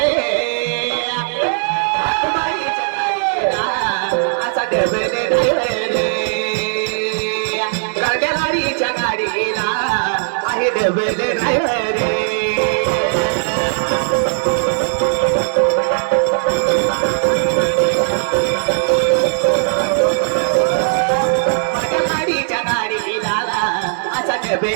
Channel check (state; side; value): silent; left; digital silence